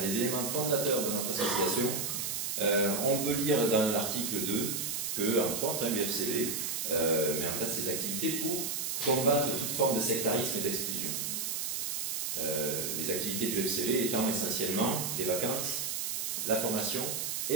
éléments fondateurs de notre association, on peut lire dans l'article 2 que, entre autres, l'UFCV met en place ses activités pour combattre toute forme de sectarisme et d'exclusion. Les activités de l'UFCV étant essentiellement les vacances, la formation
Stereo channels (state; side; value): noise; right; hiss, 2 dB below the sound